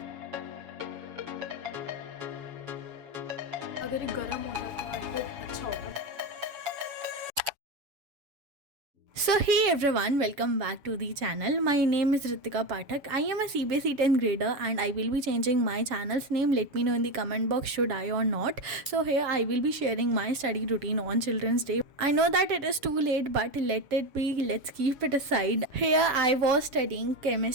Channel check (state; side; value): late; left; 7.1 ms